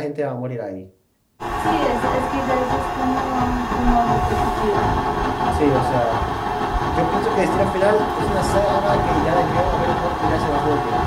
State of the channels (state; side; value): identical; both; correlation 1.00